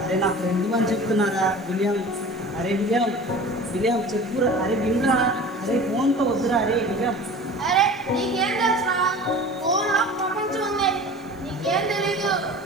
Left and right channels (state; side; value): noise; left; hiss, 29 dB below the sound